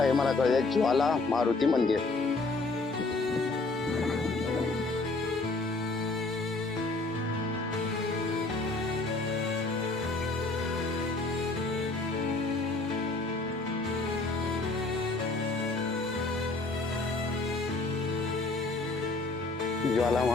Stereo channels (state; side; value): quieter; right; 3.4 dB